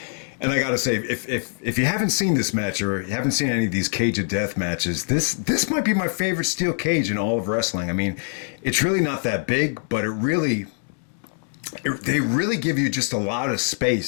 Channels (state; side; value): silent; right; digital silence